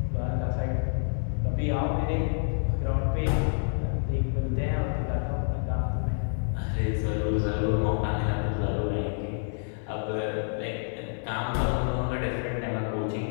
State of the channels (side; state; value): right; silent; digital silence